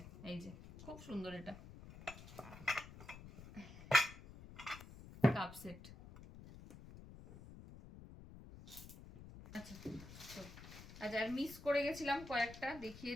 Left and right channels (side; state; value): left; noise; rumble, 15 dB below the sound